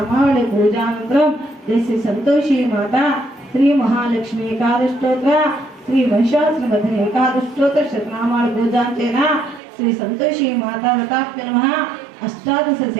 पूजानन्तरं जय श्री संतोषी माता श्री महालक्ष्मी एकादशोत्तर श्री वंशाश्रमधने एकादशोत्तर शतनामावली पूजांचेन श्री संतोषी माता रताप्य नमः अष्टादश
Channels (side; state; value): left; drops out; at 9.6 s